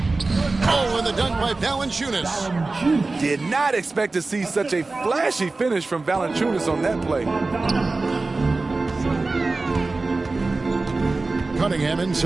Oh, and the dunk by Valanciunas. Did not expect to see such a flashy finish from Valanciunas on that play. Cunningham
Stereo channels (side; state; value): left; quieter; 3.5 dB